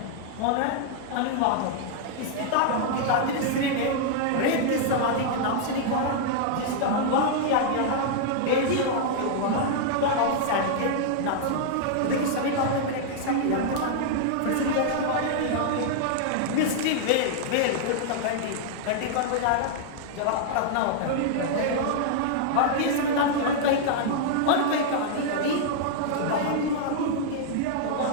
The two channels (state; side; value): different; both; correlation -0.01